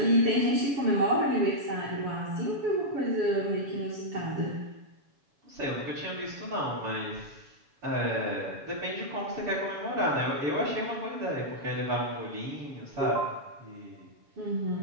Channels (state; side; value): late; left; 7.1 ms